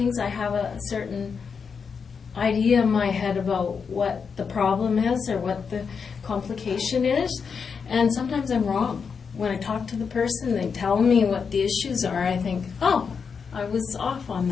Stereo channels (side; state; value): right; quieter; 5.9 dB